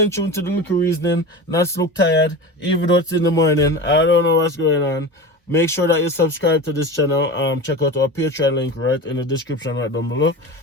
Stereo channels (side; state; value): both; normal; correlation 0.29